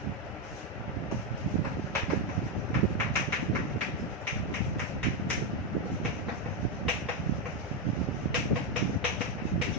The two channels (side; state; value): both; normal; correlation 0.06